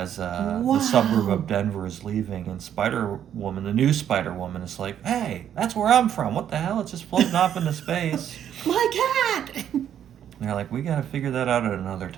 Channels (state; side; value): quieter; left; 9.8 dB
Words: the suburb of Denver is leaving, and Spider-Woman, the new Spider-Woman, is like, hey, that's where I'm from. What the hell? It's just floating off into space. My cat. And they're like, we gotta figure that out at another